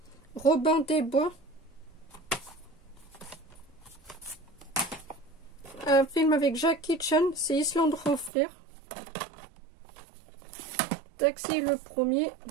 Robin des Bois. Un film avec Jackie Chan, c'est Island Enfer. Taxi, le premier.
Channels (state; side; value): drops out; left; at 8.3 s